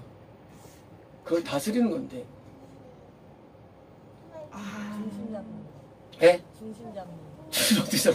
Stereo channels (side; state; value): both; identical; correlation 1.00